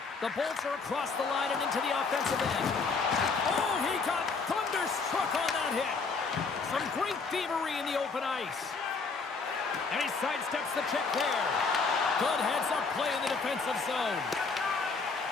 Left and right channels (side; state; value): right; quieter; 4.6 dB